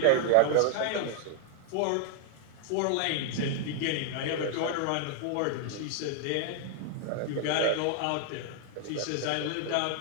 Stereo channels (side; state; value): both; different; correlation 0.00